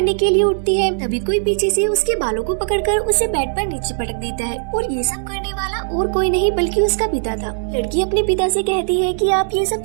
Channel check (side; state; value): left; silent; 67 dB below the other